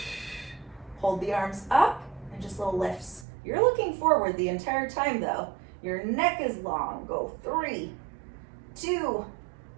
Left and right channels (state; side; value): drops out; left; at 3.2 s